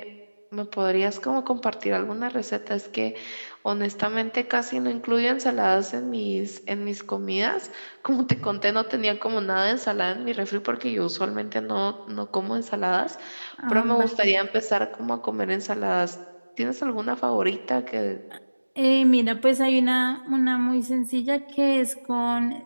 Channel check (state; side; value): inverted; both; correlation -1.00